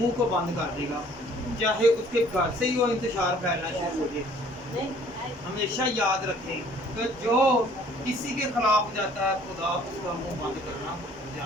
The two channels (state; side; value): normal; both; correlation 0.56